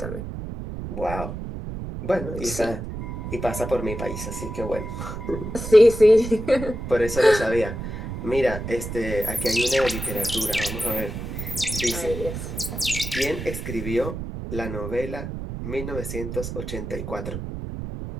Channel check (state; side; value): noise; right; rumble, 7 dB below the sound